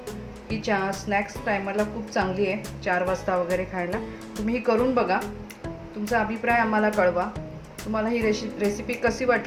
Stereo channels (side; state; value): both; identical; correlation 1.00